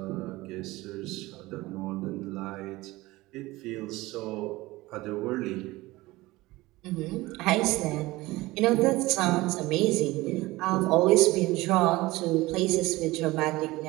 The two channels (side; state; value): left; quieter; 19.8 dB